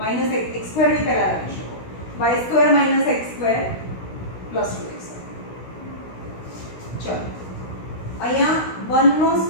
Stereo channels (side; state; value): right; late; 16 ms